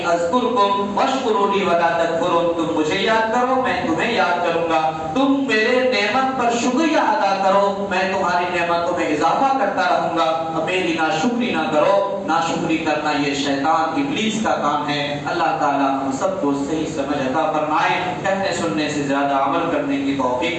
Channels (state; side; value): identical; both; correlation 1.00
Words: اذکرکم واشکرونی ولا تکفرون. تم مجھے یاد کرو میں تمہیں یاد کروں گا، تم میرے نعمت پر شکریہ ادا کرو میں تمہاری نعمتوں میں اضافہ کرتا رہوں گا. میری ناشکری نہ کرو، ناشکری کرنا یہ شیطان ابلیس کا کام ہے. اللہ تعالیٰ ہم سب کو صحیح سمجھ عطا فرمائے، کہنے سننے سے زیادہ عمل کرنے کی